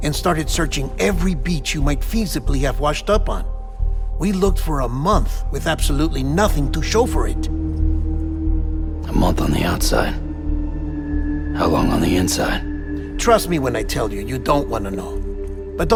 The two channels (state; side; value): identical; both; correlation 1.00